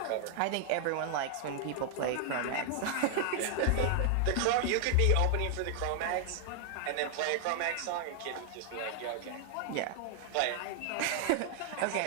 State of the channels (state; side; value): different; both; correlation 0.00